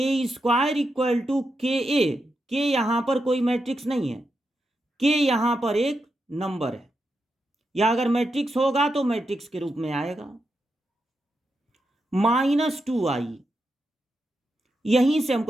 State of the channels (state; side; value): normal; both; correlation 0.86